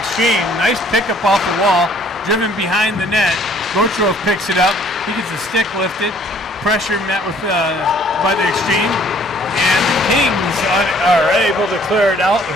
Nice pickup off the wall, driven behind the net. Botrov picks it up. He gets the stick lifted. Pressure met with by the Xtreme, and the Kings are able to clear it out.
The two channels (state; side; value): normal; both; correlation 0.59